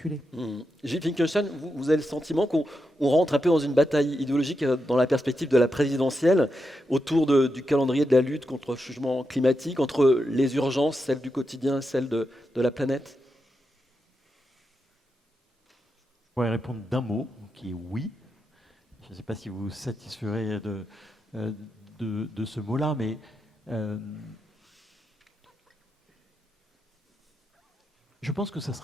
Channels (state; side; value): normal; both; correlation 0.86